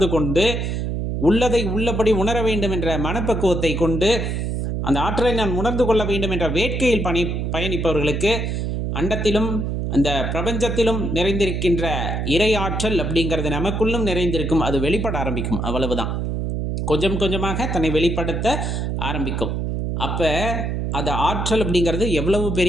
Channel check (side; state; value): right; noise; hum, 1 dB below the sound